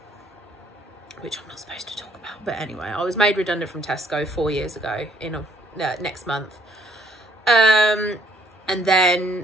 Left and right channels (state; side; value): normal; both; correlation 0.64